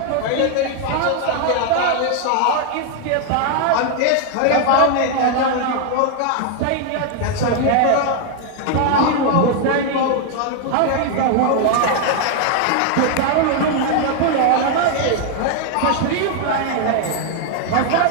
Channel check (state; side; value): different; both; correlation 0.00